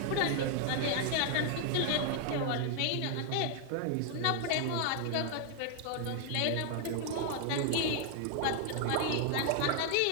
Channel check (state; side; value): different; both; correlation 0.00